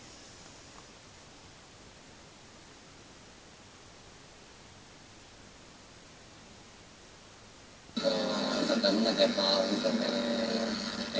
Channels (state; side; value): identical; both; correlation 1.00